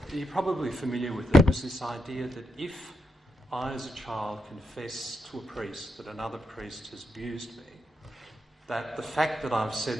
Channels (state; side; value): normal; both; correlation 0.82